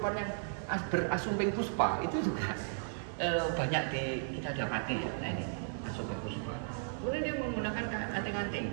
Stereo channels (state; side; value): silent; left; 54 dB below the other